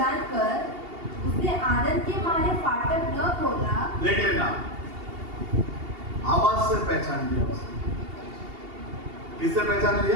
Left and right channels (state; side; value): late; left; 2.8 ms